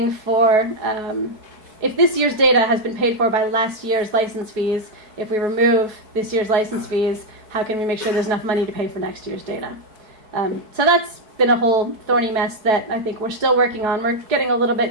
for, if this year's data has been paid for by last year's license fees, if we remove this year's license fees, how can we make sure there's enough money to pay for next year's data? So that's been a whole thorny mess that I think we're still working on. We're getting a little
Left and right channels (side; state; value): left; late; 4.7 ms